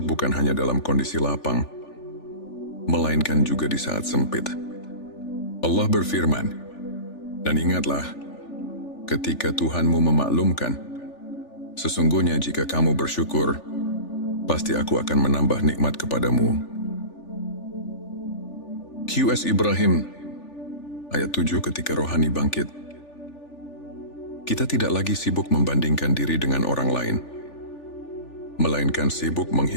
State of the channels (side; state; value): right; late; 3.4 ms